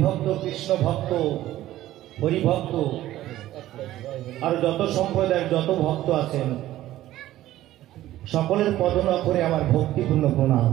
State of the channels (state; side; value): quieter; left; 14.4 dB